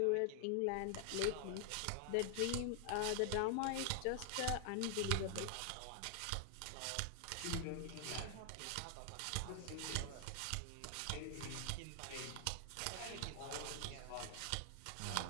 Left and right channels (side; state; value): both; different; correlation 0.00